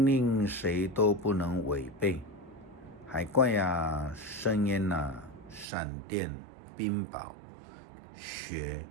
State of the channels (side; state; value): left; drops out; at 5.7 s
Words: 令谁都不能违背。海怪啊，深渊啊，闪电、冰雹、雪